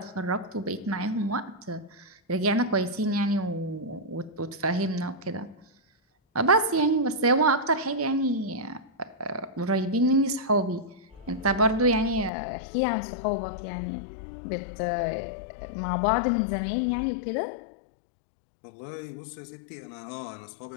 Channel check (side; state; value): right; drops out; at 12.3 s